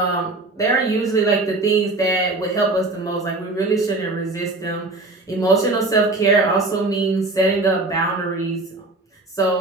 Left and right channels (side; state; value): left; quieter; 3.1 dB